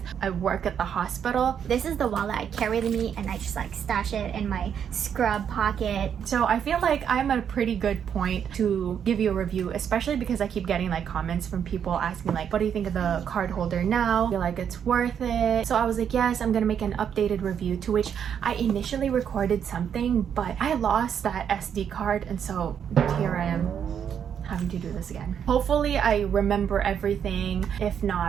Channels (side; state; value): left; quieter; 8.2 dB